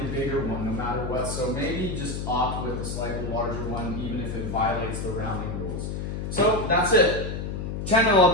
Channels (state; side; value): noise; left; hum, 4 dB below the sound